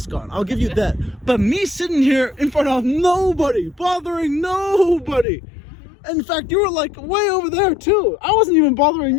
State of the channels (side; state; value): right; drops out; at 5.2 s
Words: on. I'll give you that. But me sitting here in front of nobody, bothering nobody. In fact, you were like way over there too. I wasn't even